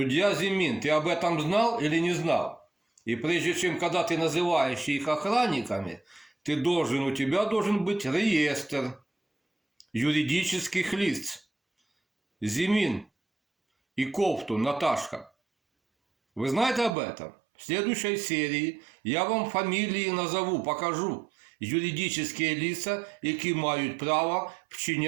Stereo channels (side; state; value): left; drops out; at 16.9 s